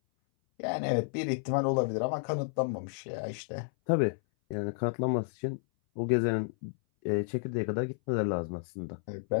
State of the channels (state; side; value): silent; right; 57 dB below the other